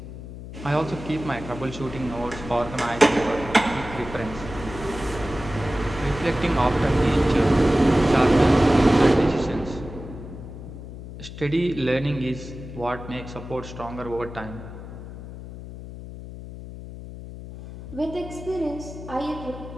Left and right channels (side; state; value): left; noise; hum, 12 dB below the sound